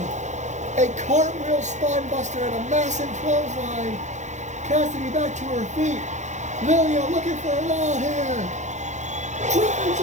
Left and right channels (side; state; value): left; late; 0.34 ms